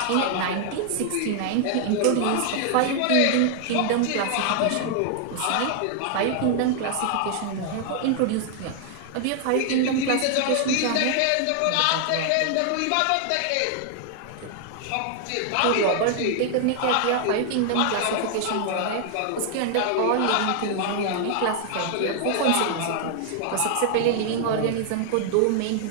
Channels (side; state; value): both; different; correlation 0.00